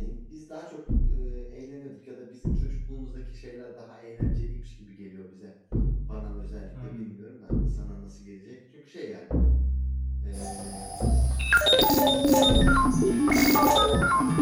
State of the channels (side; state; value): both; identical; correlation 1.00